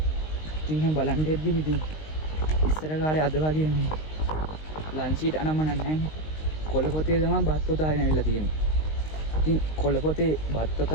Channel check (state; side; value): late; right; 19 ms